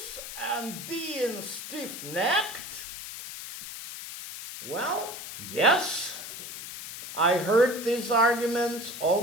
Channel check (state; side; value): noise; left; hiss, 10 dB below the sound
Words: and being stiff-necked? Well, yes, I heard these arguments